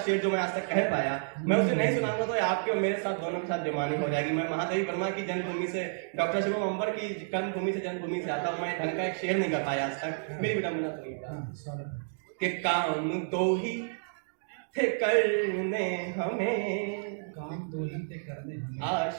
जो मैं आज तक कह पाया, मैं उसे नहीं सुनाऊंगा तो आपके और मेरे साथ दोनों के साथ बेईमानी हो जाएगी। मैं महादेवी वर्मा की जन्मभूमि से, डॉक्टर शिवम अंबर की कर्मभूमि से, जन्मभूमि से आता हूं, मैं ढंग का एक शेर नहीं कर पाया आज तक। मेरी विडंबना सुनिएगा कि काम दो ही थे करने हमें, काम दो ही थे करने हमें,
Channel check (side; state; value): left; silent; digital silence